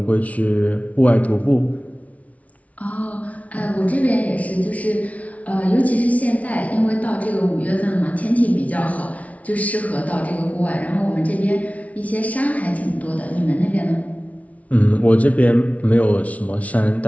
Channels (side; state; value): right; late; 0.068 ms